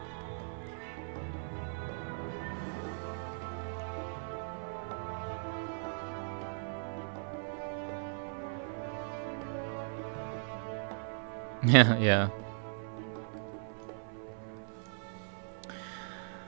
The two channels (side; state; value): left; silent; 53 dB below the other